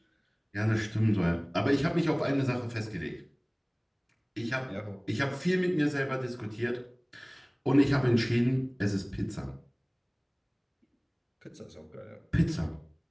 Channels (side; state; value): both; identical; correlation 1.00